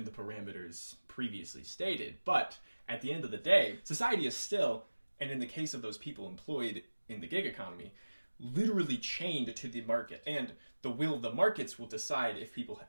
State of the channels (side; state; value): both; inverted; correlation -1.00